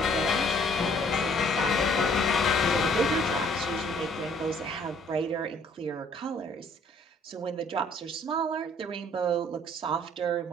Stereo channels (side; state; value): both; normal; correlation 0.60